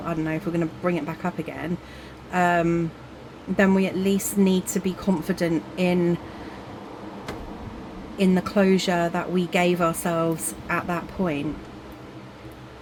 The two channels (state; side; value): identical; both; correlation 1.00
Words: I don't know, if we're going to bring it back up again, then we at least need to be confident in the closure that we gave ourselves at that point.